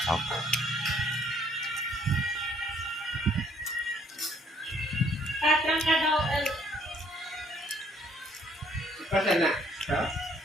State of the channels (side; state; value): both; normal; correlation 0.64